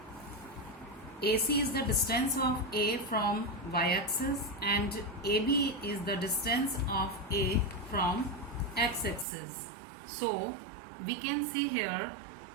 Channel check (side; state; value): left; drops out; at 9.2 s